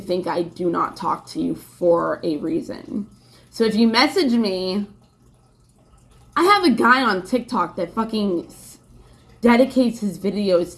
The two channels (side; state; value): both; identical; correlation 1.00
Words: I do not talk to you for a reason? So if you message me, I have a guy on TikTok that fucking dedicates his videos